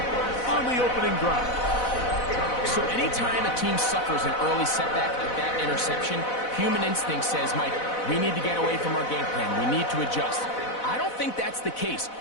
on the opening drive. So anytime a team suffers an early setback like that interception, human instinct says, Mike, we need to get away from our game plan. We need to adjust. I don't think that's the case.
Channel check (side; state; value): right; late; 4.0 ms